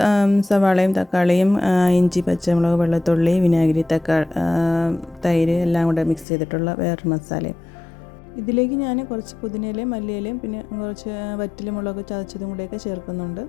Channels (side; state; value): right; drops out; at 6.2 s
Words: സവാളയും തക്കാളിയും ഇഞ്ചി പച്ചമുളക് വെളുത്തുള്ളി വിനാഗിരി തൈര് എല്ലാം കൂടെ മിക്സ് ചെയ്തിട്ടുള്ള വേറൊരു മസാലയും. ഇതിലേക്ക് ഞാൻ കുറച്ച് പുതിനയിലയും മല്ലിയിലയും പിന്നെ കുറച്ച് വറ്റൽമുളക് ചതച്ചതും കൂടെയൊക്കെ ചേർക്കുന്നുണ്ട്.